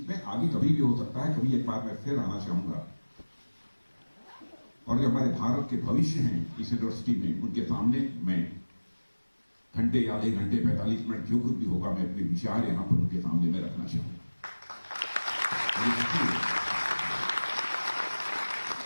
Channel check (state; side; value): inverted; both; correlation -1.00